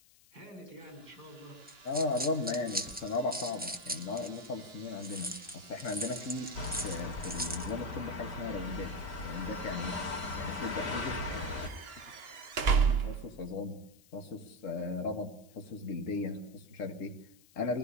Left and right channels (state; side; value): noise; left; hiss, 27 dB below the sound